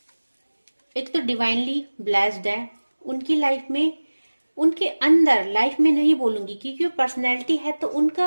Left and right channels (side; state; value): both; inverted; correlation -1.00